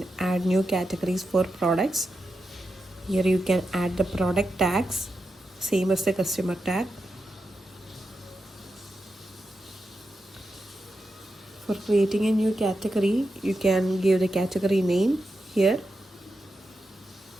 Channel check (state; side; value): normal; both; correlation 0.88